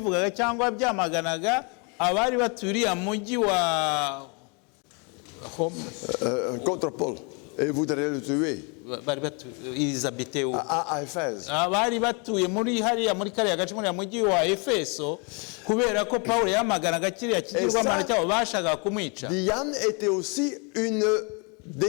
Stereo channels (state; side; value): quieter; right; 33.8 dB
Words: cyangwa byamaganaga abari baturiye mujyi wa contre Paul et voudraient le tuer. À Éphèse. Abari batuye muri hariya muri kariya gace muri mujyi wa Efeso kubera ko Paulo yamaganaga kiriya kigirwamana cyabo bashaka kumwica. Diane était aussi une